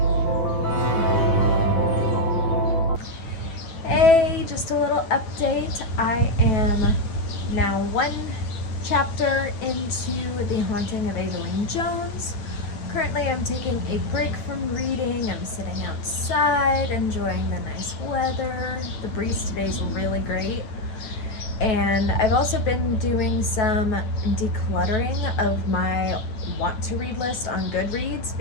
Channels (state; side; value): late; right; 9.2 ms